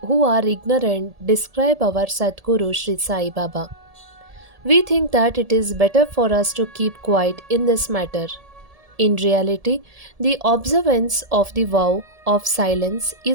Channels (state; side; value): late; left; 1.7 ms